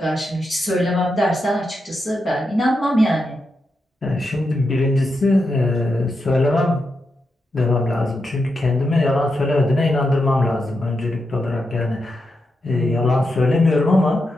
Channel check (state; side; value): normal; both; correlation 0.86